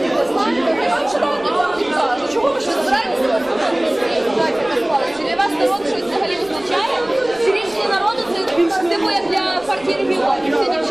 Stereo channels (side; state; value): right; noise; rumble, 26 dB below the sound